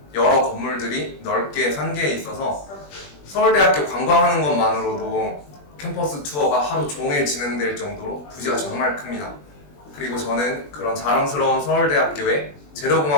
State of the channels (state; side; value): late; right; 20 ms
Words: 여러 건물들이 넓게 산계에 있어서 서울대학교 관광하는 것만으로도 캠퍼스 투어가 하루 종일 진행될 정도로 부지가 정말 큽니다. 그리고 저는 그런 자랑스러운 서울대학교의